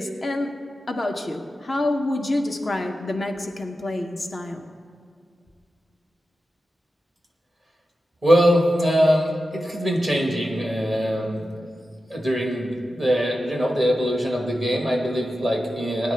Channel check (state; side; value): normal; both; correlation 0.92